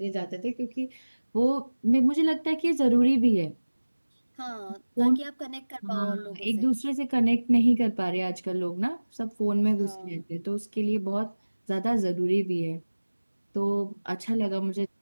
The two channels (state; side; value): inverted; both; correlation -1.00